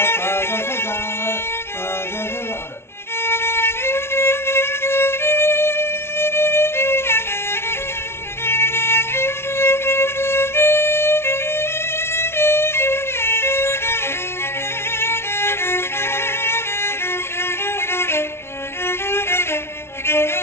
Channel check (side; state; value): right; late; 0.12 ms